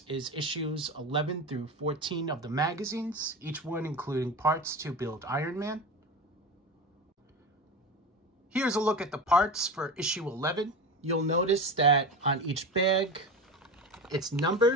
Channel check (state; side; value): normal; both; correlation 0.25